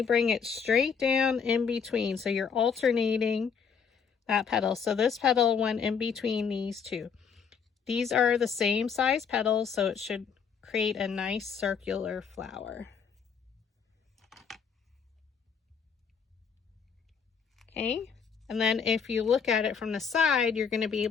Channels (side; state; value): right; quieter; 6.5 dB